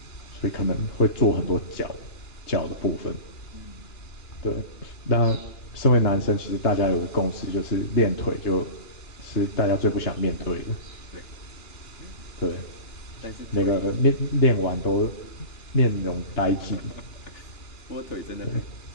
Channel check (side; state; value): right; late; 2.9 ms